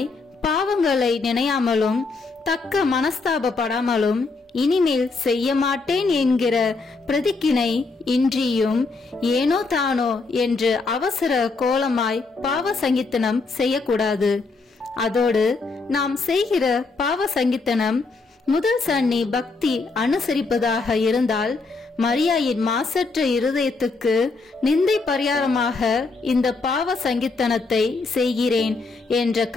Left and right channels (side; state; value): right; quieter; 3.9 dB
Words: பாவங்களை நினையாமலும் தக்க மனஸ்தாபப்படாமலும் இனிமேல் செய்ய மாட்டேன் என்கிற பிரதிக்கினை இன்றியும் ஏனோ தானோ என்று அவசர கோலமாய் பாவ சங்கீர்த்தனம் செய்யக்கூடாது. அதோடு நாம் செய்கிற பாவ சங்கீர்த்தனம் முதல் சன்னி பக்தி அனுசரிப்பதாக இருந்தால் மரியாயின் மாசற்ற இருதயத்துக்கு நிந்தை பரிகாரமாக இந்த பாவ சங்கீர்த்தனத்தை செய்கிறேன் என்ற